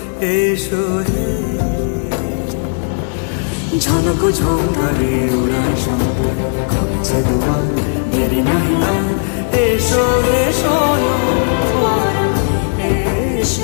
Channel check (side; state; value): right; silent; digital silence